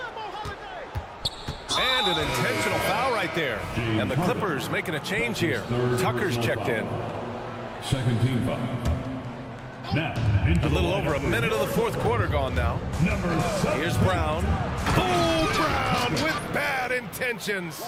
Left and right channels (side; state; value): both; identical; correlation 1.00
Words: And an intentional foul right there. And the Clippers making a change here. Tucker's checked in. Second team foul. Now, a little over a minute of the fourth quarter gone now. Here's Brown. Oh, Brown with bad intentions.